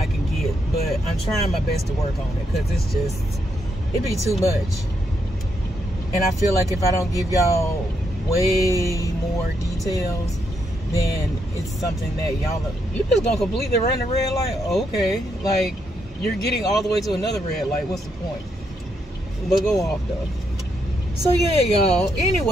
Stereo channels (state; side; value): normal; both; correlation 0.79